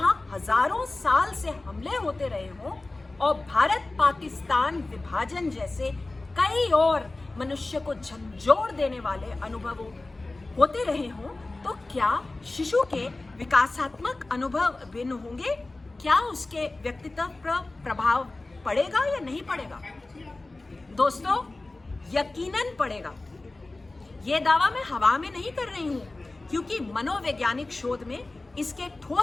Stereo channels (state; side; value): quieter; right; 3.1 dB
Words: हजारों साल से हमले होते रहे हों और भारत पाकिस्तान विभाजन जैसे कई और मनुष्य को झंझोड़ देने वाले अनुभव होते रहे हों, तो क्या शिशु के विकासात्मक अनुभव भिन्न होंगे? क्या उसके व्यक्तित्व पर प्रभाव पड़ेगा या नहीं पड़ेगा? दोस्तों, यकीनन पड़ेगा। ये दावा मैं हवा में नहीं कर रही हूँ, क्योंकि मनोवैज्ञानिक शोध में इसके